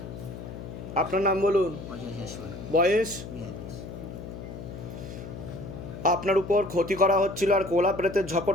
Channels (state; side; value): noise; left; hum, 10 dB below the sound